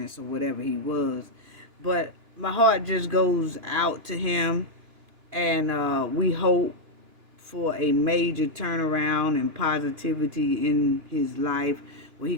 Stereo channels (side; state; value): left; late; 2.9 ms